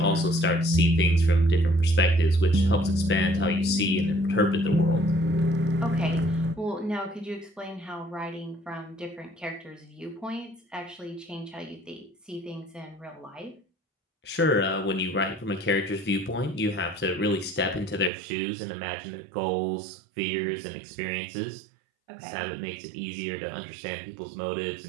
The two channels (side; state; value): left; drops out; at 18.1 s